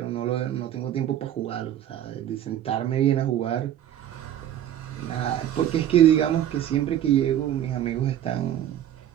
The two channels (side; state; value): left; quieter; 11.2 dB